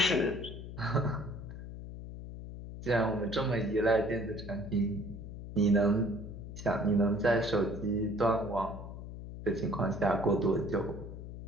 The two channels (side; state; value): left; noise; hum, 10 dB below the sound